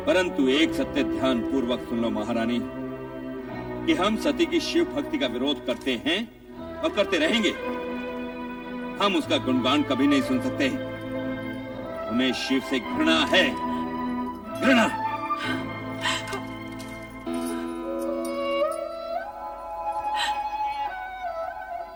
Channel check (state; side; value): identical; both; correlation 1.00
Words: परंतु एक सत्य ध्यान पूर्वक सुन लो महारानी, कि हम सती की शिव भक्ति का विरोध करते हैं और करते रहेंगे। हम उसका गुणगान कभी नहीं सुन सकते। हमें शिव से घृणा है, घृणा।